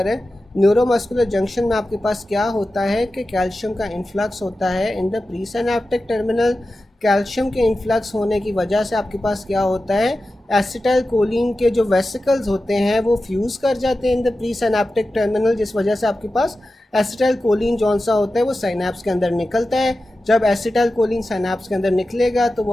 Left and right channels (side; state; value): both; normal; correlation 0.93